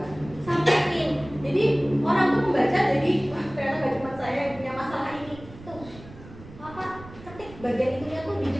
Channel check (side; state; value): right; noise; rumble, 18 dB below the sound